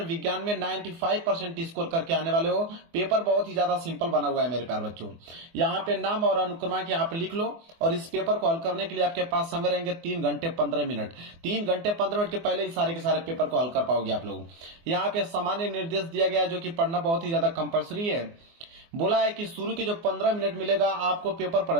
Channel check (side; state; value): left; late; 24 ms